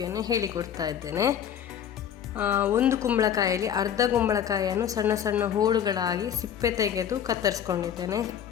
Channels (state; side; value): quieter; right; 9.1 dB